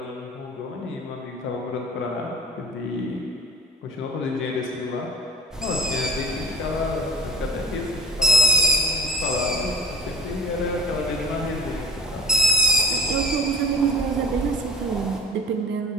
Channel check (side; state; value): both; normal; correlation 0.44